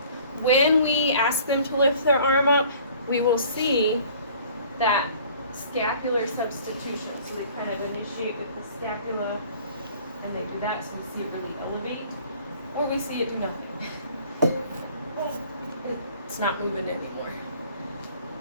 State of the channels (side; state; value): both; inverted; correlation -0.52